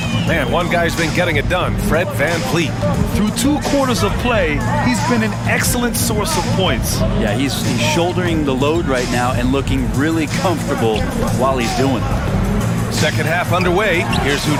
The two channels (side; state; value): both; identical; correlation 1.00